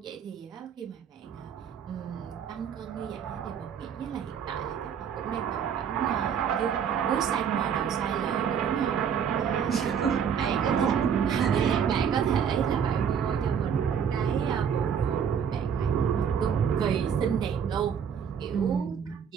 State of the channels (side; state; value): left; quieter; 7.6 dB